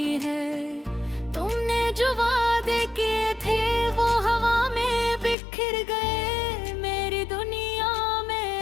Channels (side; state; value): right; drops out; at 5.4 s